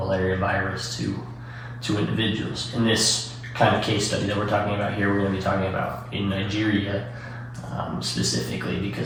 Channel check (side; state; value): both; identical; correlation 1.00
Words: virus to individuals. In this kind of case study that we're talking about here, we're going to be talking about in Nigeria specifically,